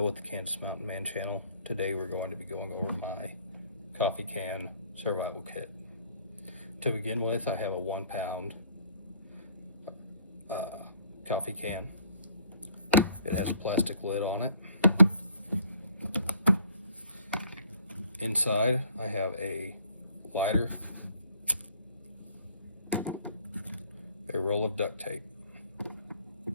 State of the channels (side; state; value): both; inverted; correlation -0.59